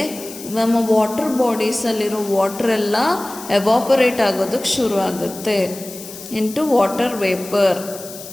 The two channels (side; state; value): left; noise; hiss, 14 dB below the sound